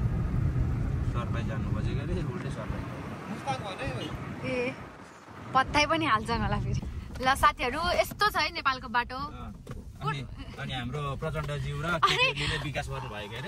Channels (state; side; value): identical; both; correlation 1.00